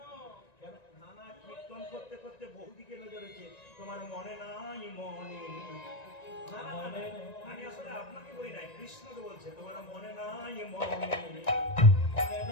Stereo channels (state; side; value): late; right; 1.9 ms